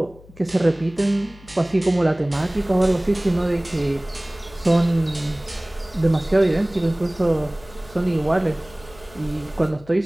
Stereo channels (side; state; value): left; noise; hum, 23 dB below the sound